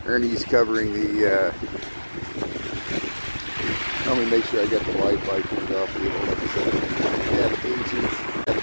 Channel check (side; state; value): both; inverted; correlation -1.00